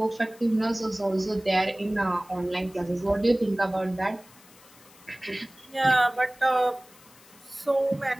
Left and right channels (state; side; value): noise; left; hiss, 25 dB below the sound